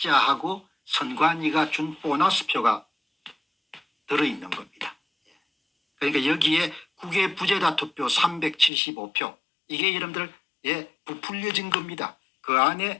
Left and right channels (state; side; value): drops out; right; at 8.7 s